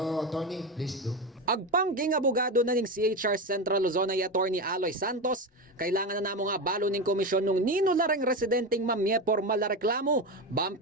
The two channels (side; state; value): both; normal; correlation 0.18